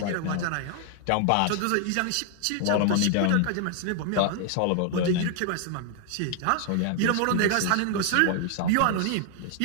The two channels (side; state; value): both; different; correlation 0.00